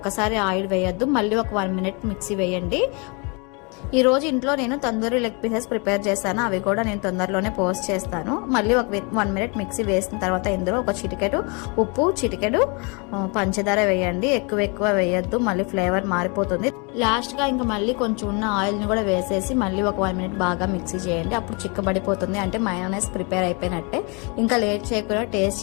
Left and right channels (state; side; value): quieter; right; 32.1 dB